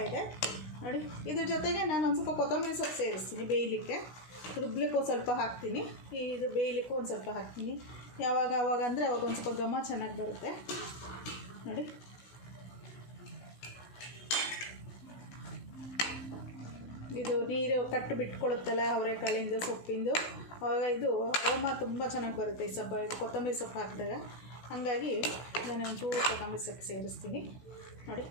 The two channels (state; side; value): late; right; 16 ms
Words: ನೋಡಿ. ಇದ್ರ ಜೊತೆಗೆ ನಾನು ಒಂದು ಸ್ವಲ್ಪ ಕೊತ್ತಂಬರಿ ಸೊಪ್ಪು ಸೇರಿಸ್ತೀನಿ ಬೇಯಲಿಕ್ಕೆ. ರುಬ್ಲಿಕ್ಕೆ ಒಂದು ಸ್ವಲ್ಪ ಹಾಕ್ತೀನಿ, ಇದು ಬೇಯಲಿಕ್ಕೂ ಒಂದು ಸ್ವಲ್ಪ ಹಾಕ್ತೀನಿ. ಯಾವಾಗ ಅಂದರೆ ಅವಾಗ ಒಂದು ಸ್ವಲ್ಪ ಘಮ ಚೆನ್ನಾಗಿ ಬರುತ್ತೆ ನೋಡಿ. ಇದು ನೀರು ಕಟ್ಟು ಬಿಟ್ಕೊಳ್ಳುತ್ತಲ್ಲ ಅವರೆಕಾಳಿಂದು ಸೊಪ್ಪಿಂದು, ಆವಾಗ ಇದು ಅರೋಮ ತುಂಬ ಚೆನ್ನಾಗಿ ಬರುತ್ತೆ ಈ ಇದು ಕೊತ್ತಂಬರಿ ಸೊಪ್ಪು ಹಾಕಿದಾಗ. ಹಾಗಾಗಿ ನಾನು ಒಂಚೂರು ಕೊತ್ತಂಬರಿ ಸೊಪ್ಪು ಸೇರಿಸ್ತೀನಿ ನೋಡಿ.